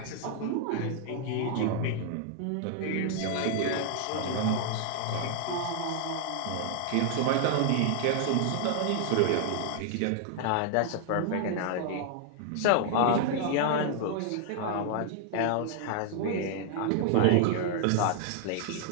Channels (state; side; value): different; both; correlation 0.00